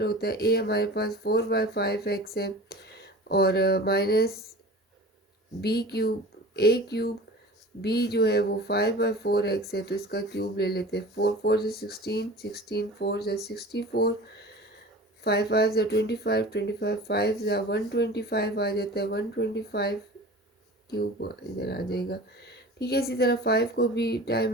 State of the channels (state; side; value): normal; both; correlation 0.39